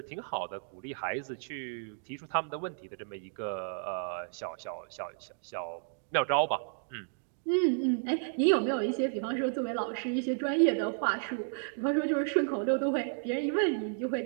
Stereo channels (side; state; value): left; silent; digital silence